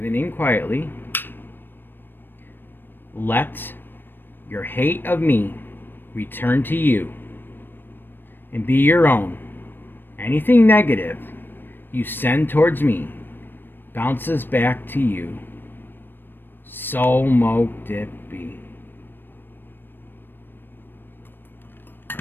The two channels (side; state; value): right; late; 0.095 ms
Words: name quietly. Let your hate of me return to you and be your own. Anything negative you send towards me bounces back to you. So mote it be.